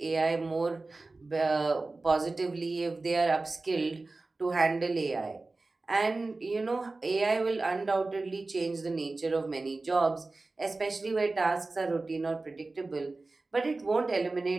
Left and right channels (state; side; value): quieter; left; 3.4 dB